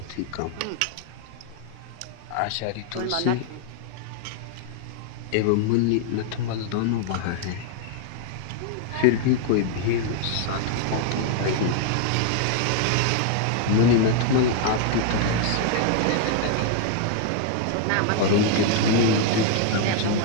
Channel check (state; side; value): different; both; correlation 0.00